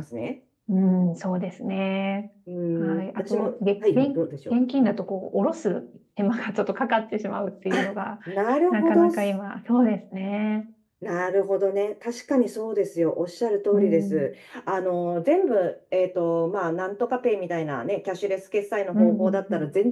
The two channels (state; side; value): identical; both; correlation 1.00